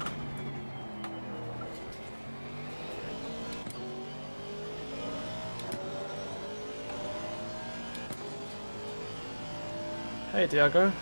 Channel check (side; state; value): both; inverted; correlation -1.00